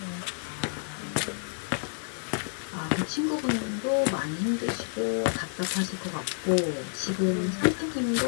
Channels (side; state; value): right; silent; digital silence